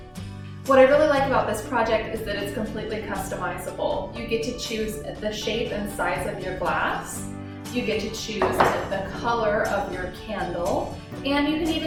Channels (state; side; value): identical; both; correlation 1.00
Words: What I really like about this project is that it's completely customizable. You get to choose the shape and size of your glass. You get to choose the color of your candle, and you can